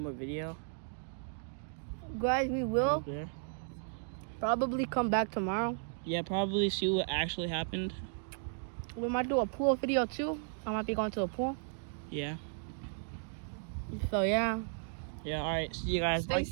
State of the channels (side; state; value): left; silent; digital silence